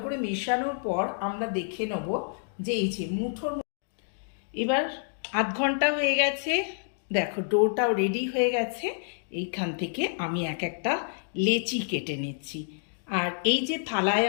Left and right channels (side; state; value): right; silent; digital silence